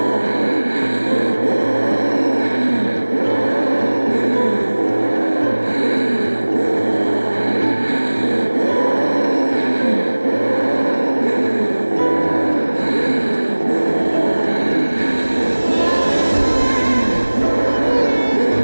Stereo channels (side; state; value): both; inverted; correlation -1.00